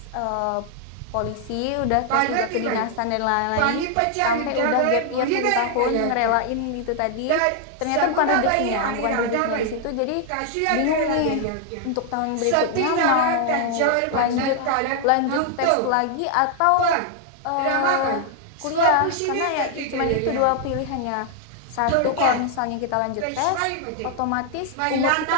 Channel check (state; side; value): different; both; correlation 0.00